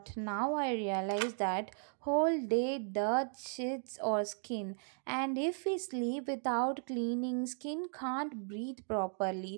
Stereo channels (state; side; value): silent; left; 54 dB below the other